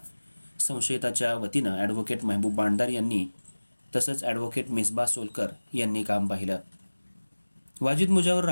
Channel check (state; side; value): inverted; both; correlation -1.00